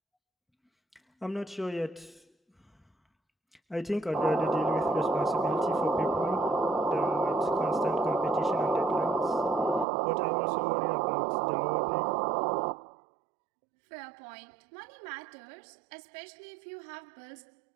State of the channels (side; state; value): left; drops out; at 9.9 s